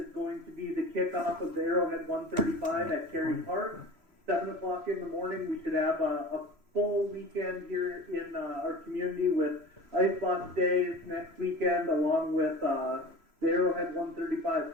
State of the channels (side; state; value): left; late; 3.0 ms